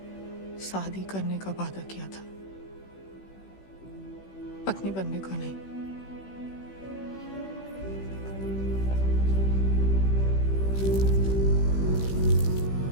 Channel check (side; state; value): right; late; 16 ms